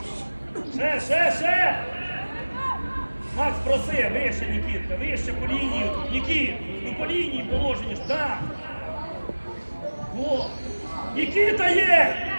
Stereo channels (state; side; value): inverted; both; correlation -1.00